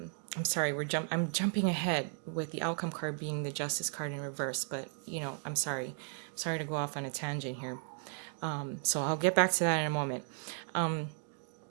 sorry, I'm jumping ahead with the outcome card being the Justice card in reverse, but you know, I'm sorry to go off on a tangent here. So I'll get back to that in a moment.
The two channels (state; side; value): silent; left; 54 dB below the other